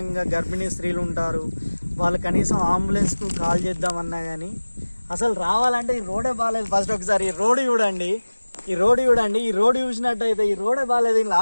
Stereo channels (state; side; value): inverted; both; correlation -1.00